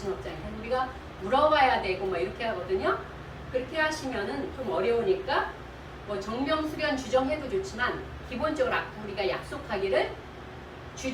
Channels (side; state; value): both; identical; correlation 1.00